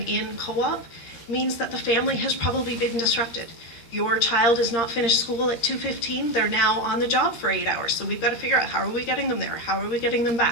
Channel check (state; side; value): late; right; 13 ms